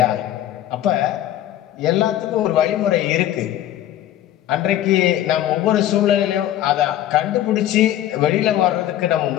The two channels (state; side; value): quieter; right; 12.5 dB